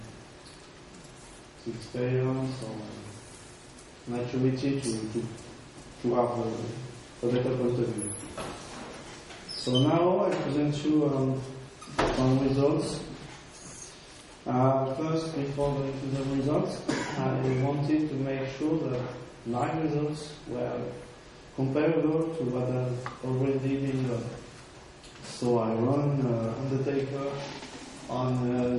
experience or maturity to have a better point of view. So now I present you some results. First, before going to the results, I wanted to make sure that my results were comparable to what has already been done. So I run Undertaker on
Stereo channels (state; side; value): identical; both; correlation 1.00